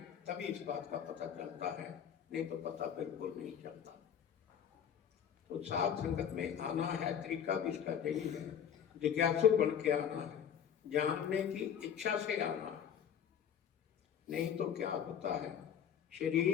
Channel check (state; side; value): quieter; right; 8.6 dB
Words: तभी इस बात का पता चलता है, नहीं तो पता बिल्कुल नहीं चलता। तो साथ संगत में आना है, तरीका भी इसका यही है, जिज्ञासु बन के आना है, जानने की इच्छा से आना है। नहीं तो क्या होता है,